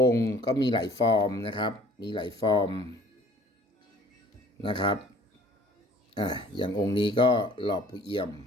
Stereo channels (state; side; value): normal; both; correlation 0.52